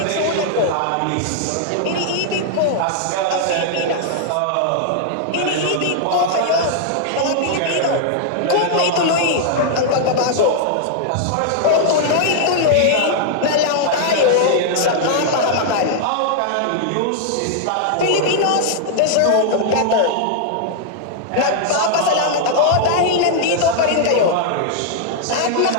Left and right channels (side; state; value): both; different; correlation -0.01